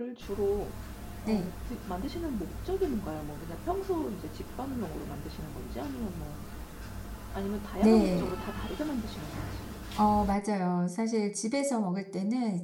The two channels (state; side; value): identical; both; correlation 1.00